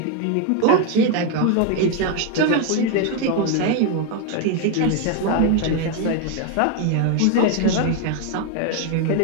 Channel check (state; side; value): different; both; correlation 0.01